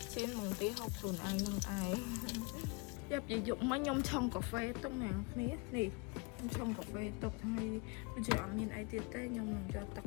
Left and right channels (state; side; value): quieter; right; 29.9 dB